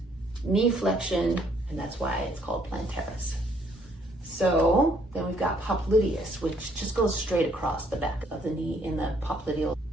knee flexion, and that's why it's called plantaris. So then we've got popliteus, which just goes straight across the back of the knee in the popliteal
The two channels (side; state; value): both; normal; correlation 0.66